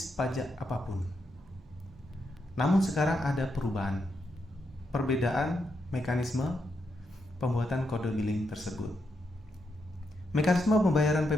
pajak apapun. Namun sekarang ada perbedaan mekanisme pembuatan kode billing tersebut. Mekanisme pembayaran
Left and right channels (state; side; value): normal; both; correlation 0.82